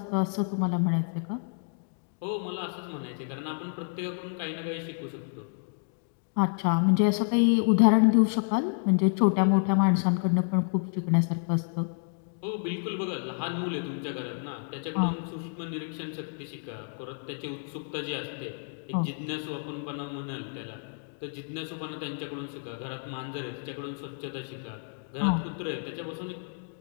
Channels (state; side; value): silent; right; 58 dB below the other